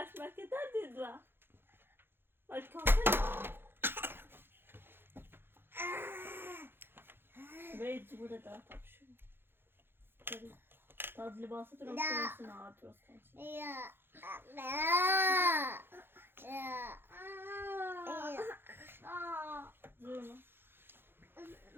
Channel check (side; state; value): left; late; 0.10 ms